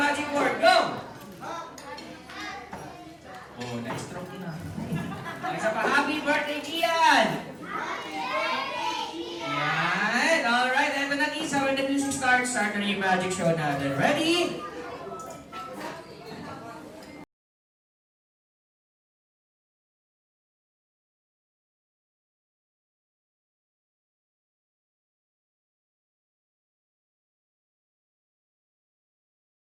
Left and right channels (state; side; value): identical; both; correlation 1.00